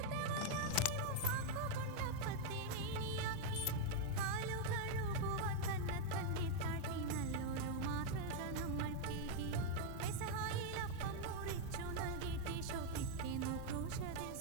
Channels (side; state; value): both; different; correlation 0.00